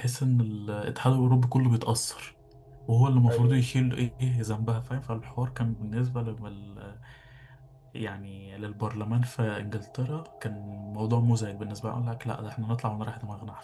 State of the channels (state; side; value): identical; both; correlation 1.00